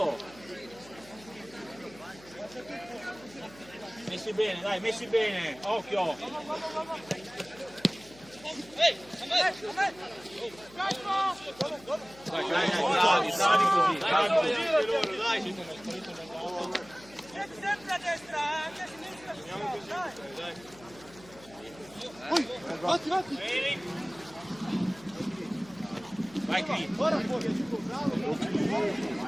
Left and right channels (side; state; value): left; noise; hum, 22 dB below the sound